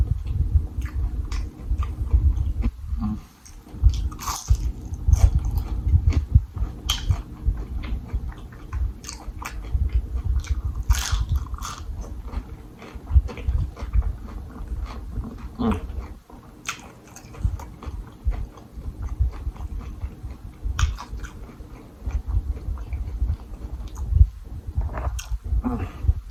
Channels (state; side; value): identical; both; correlation 1.00